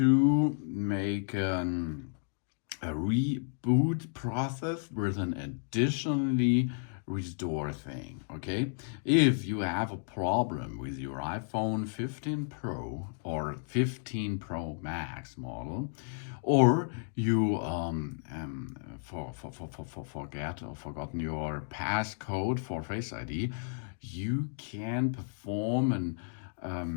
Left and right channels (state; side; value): silent; right; digital silence